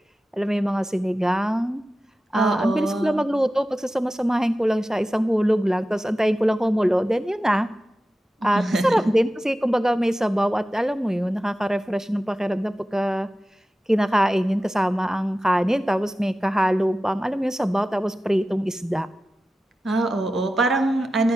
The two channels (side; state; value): both; normal; correlation 0.94